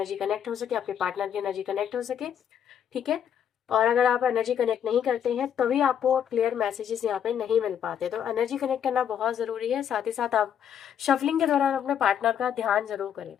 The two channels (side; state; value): right; quieter; 8.9 dB